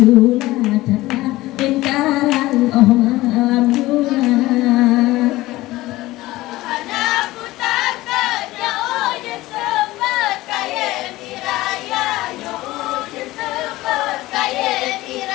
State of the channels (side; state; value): right; quieter; 18.0 dB